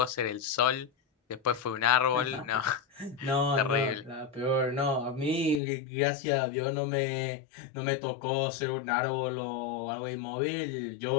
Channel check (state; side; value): drops out; right; at 5.6 s